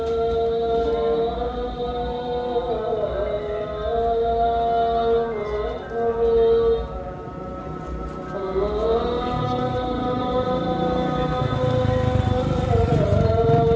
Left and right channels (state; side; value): identical; both; correlation 1.00